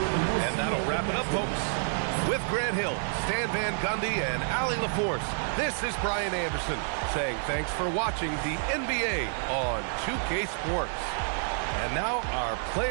And that'll wrap it up, folks. With Grant Hill, Stan Van Gundy, and Allie LaForce, this is Brian Anderson saying thanks for watching the NBA on 2K Sports. And now our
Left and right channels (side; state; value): left; silent; 59 dB below the other